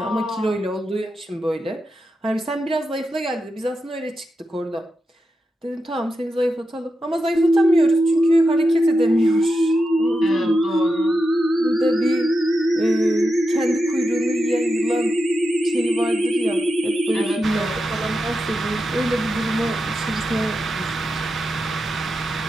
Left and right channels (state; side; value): normal; both; correlation 0.88